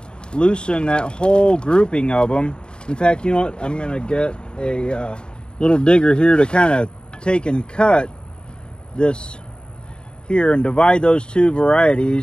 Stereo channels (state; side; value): late; right; 0.050 ms